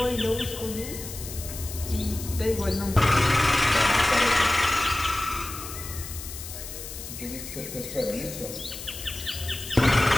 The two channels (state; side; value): noise; left; hiss, 10 dB below the sound